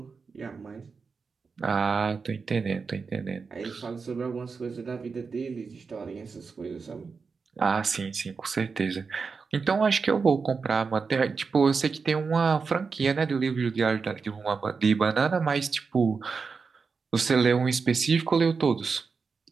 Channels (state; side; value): quieter; left; 5.0 dB